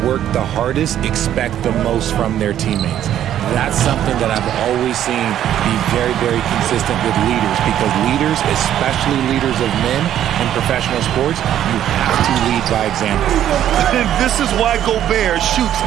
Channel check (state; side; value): quieter; left; 11.1 dB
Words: work the hardest expect the most from their teammates. That's something that I've always seen be very, very consistent with leaders, because leaders, especially leaders of men in professional sports, you have to lead by example. And this is why Gobert shoots